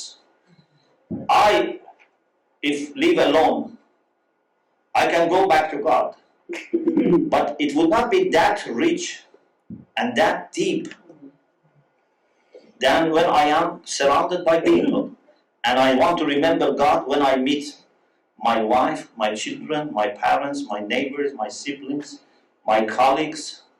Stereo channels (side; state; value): both; identical; correlation 1.00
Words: If live alone, I can go back to God, but it would not be that rich and that deep than when I am surrounded by people. And I want to remember God when I meet my wife, my children, my parents, my neighbors, my siblings, my colleagues,